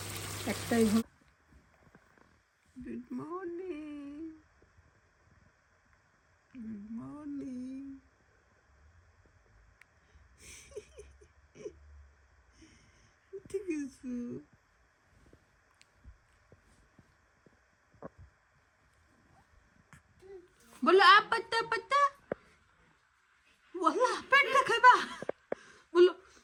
একটাই। Good morning, good morning. ঠিক আছে, বলো আ পাত্তা পাত্তা, ওয়াল্লাহ পেটটা খাইবা, বলো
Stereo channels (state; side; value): identical; both; correlation 1.00